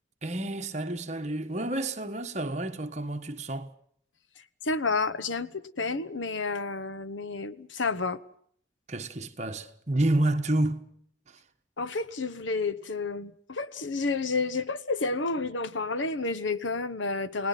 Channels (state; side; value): normal; both; correlation 0.22